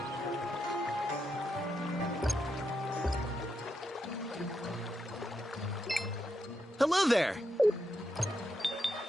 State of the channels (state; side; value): normal; both; correlation 0.83